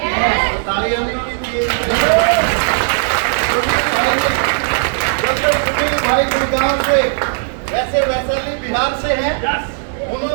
तालियां नहीं होनी चाहिए। सुनील भाई गुड़गांव से, वैसे वैशाली बिहार से हैं,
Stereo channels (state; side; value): silent; left; digital silence